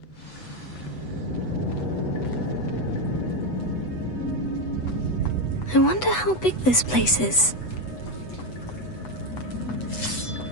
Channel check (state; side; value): late; right; 8.0 ms